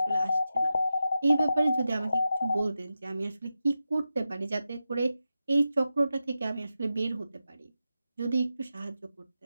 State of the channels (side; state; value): both; inverted; correlation -0.91